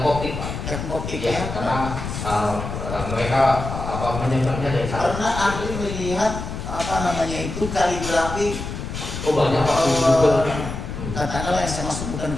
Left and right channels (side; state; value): left; noise; rumble, 6 dB below the sound